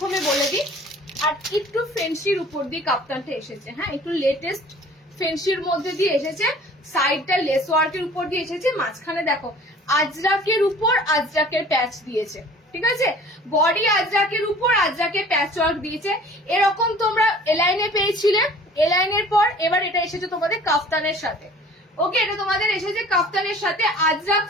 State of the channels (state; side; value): normal; both; correlation 0.48